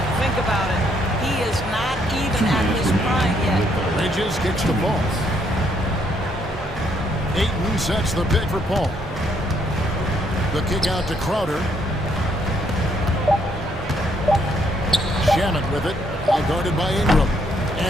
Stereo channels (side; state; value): both; normal; correlation 0.71